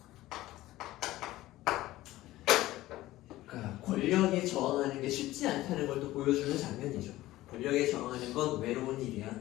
그러니까 권력에 저항하는 게 쉽지 않다는 걸 또 보여주는 장면이죠. 권력에 저항하는 건 외로운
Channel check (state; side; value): quieter; right; 16.4 dB